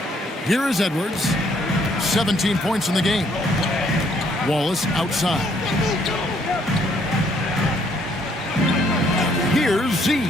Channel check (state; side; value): normal; both; correlation 0.67